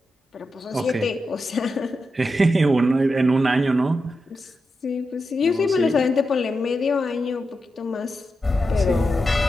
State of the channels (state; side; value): normal; both; correlation 0.88